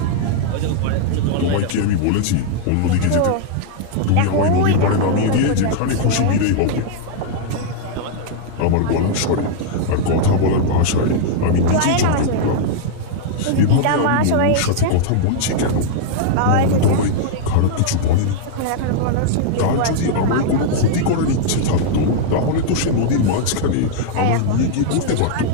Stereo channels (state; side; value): different; both; correlation -0.01